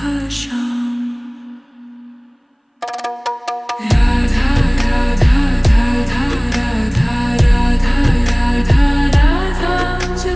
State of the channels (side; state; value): both; identical; correlation 1.00